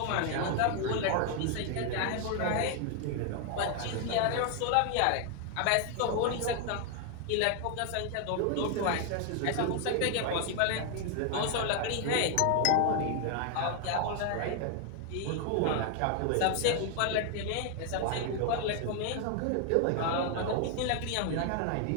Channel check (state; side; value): different; both; correlation 0.00